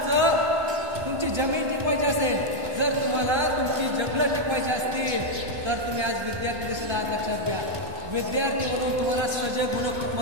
तुमची जमीन टिकवायची असेल, जर तुम्हाला तुमची जंगलं टिकवायची असतील, तर तुम्ही आज विद्यार्थी देखील आज लक्षात घ्या. विद्यार्थी म्हणून तुम्हाला सजग होणं खूप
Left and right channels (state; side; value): late; left; 1.3 ms